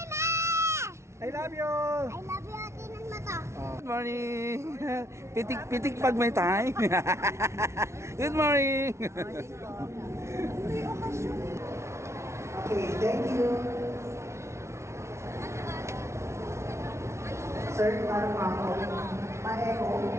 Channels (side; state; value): left; late; 0.13 ms